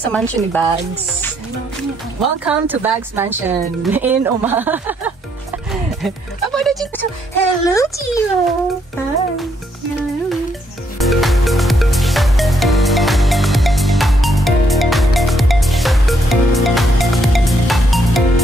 sa mansion ni Bags. Welcome to Bags Mansion in Oma. Hello, Gio. Hi. Hello.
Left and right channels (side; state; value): both; normal; correlation 0.73